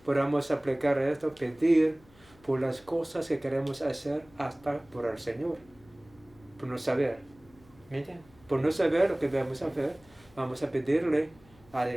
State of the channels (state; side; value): noise; left; hum, 27 dB below the sound